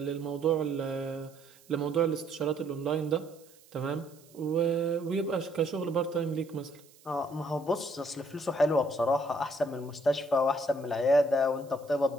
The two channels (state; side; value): noise; right; hiss, 26 dB below the sound